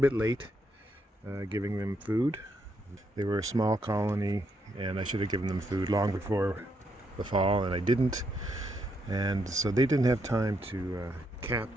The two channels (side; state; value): both; normal; correlation 0.77